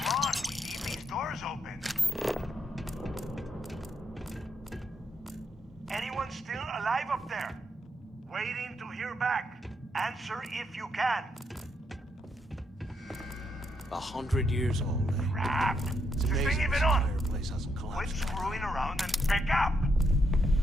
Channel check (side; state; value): both; normal; correlation 0.78